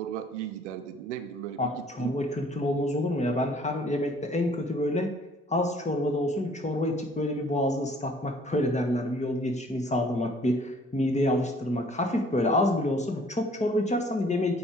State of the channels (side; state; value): both; normal; correlation 0.57